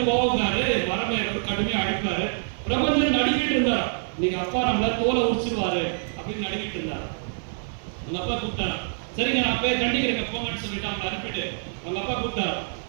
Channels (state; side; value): silent; left; digital silence